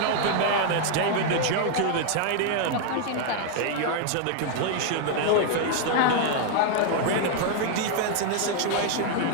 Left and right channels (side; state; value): both; different; correlation 0.00